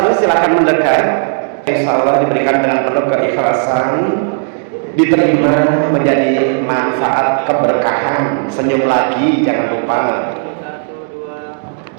silakan mendekat. Insya Allah diberikan dengan penuh keikhlasan, diterima menjadi manfaat keberkahan. Senyum lagi, jangan lupa.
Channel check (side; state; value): left; silent; digital silence